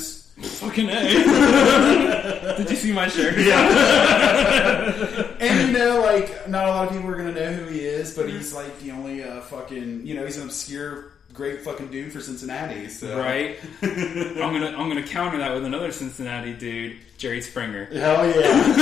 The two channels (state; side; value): quieter; right; 7.5 dB